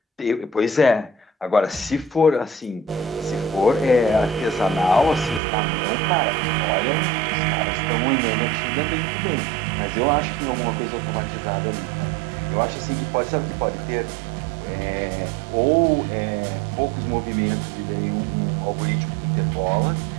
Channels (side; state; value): left; drops out; at 5.4 s